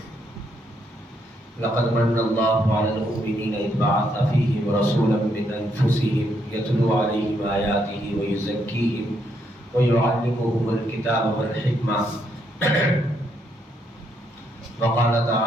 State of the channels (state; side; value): normal; both; correlation 0.75